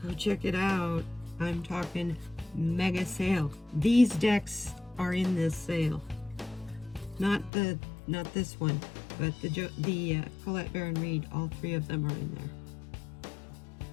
Go check it out. I'm talking mega sale. These decks are in this sale. Not this one, but the Colette Baron Reed. All 3 of them are in there,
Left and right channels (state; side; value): drops out; right; at 7.5 s